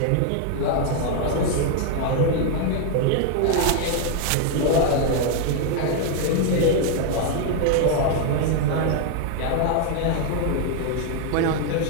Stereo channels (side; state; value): both; different; correlation 0.00